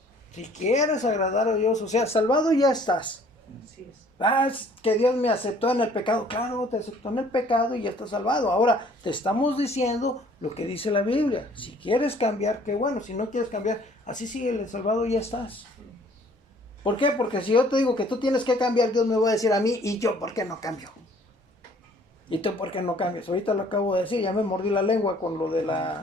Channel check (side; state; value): both; normal; correlation 0.57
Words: si quieres agradar a Dios, o sea, salvado ya estás. Es que Dios me aceptó en el pecado. Claro, te aceptó en el pecado y ya estás salvado. Ahora, te estamos diciendo lo que dice la Biblia. Si quieres cambiar, qué bueno. Si no quieres cambiar, así sigue el salvado y ya estás. ¿Por qué? Porque si yo te digo que tú tienes que cambiar, Dios me va a decir a mí, ¿y yo por qué no cambio? ¿Y tú por qué no cambias? Ahorita lo acabo de decir, ya me mordí la lengua con lo de